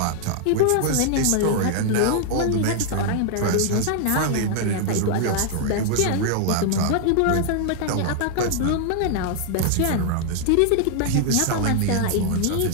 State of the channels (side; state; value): both; different; correlation 0.00